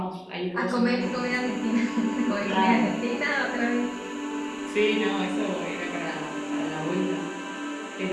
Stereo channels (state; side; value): identical; both; correlation 1.00